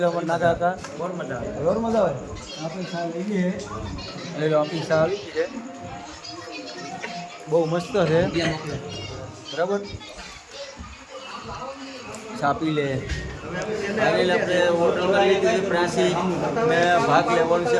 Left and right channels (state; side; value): identical; both; correlation 1.00